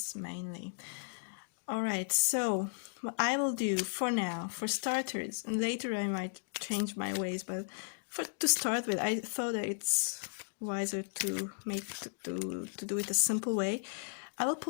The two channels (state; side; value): silent; right; digital silence